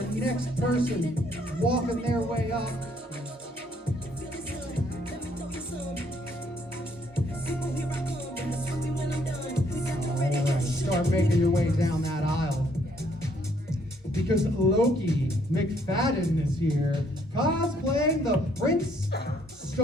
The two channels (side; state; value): both; normal; correlation 0.67